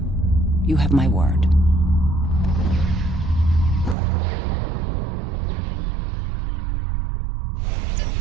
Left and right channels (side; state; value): left; drops out; at 4.0 s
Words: You have my word.